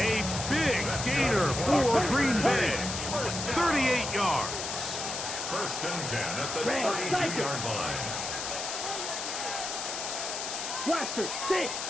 big gainer for Green Bay. 38 yards. 1st and 10 at the 32-yard line. Blaster 6.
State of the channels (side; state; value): left; noise; hiss, 4 dB below the sound